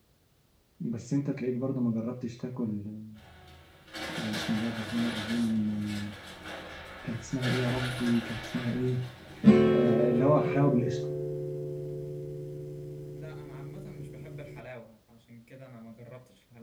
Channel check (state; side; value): identical; both; correlation 1.00